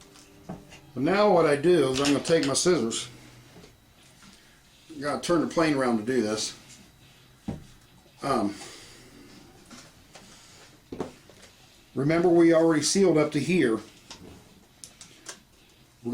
But now what I do is I'm going to take my scissors. I've got to turn the plane around to do this. Remember, we already sealed up to here. We're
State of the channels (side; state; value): both; identical; correlation 1.00